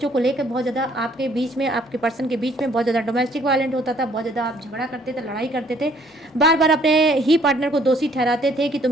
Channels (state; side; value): normal; both; correlation 0.62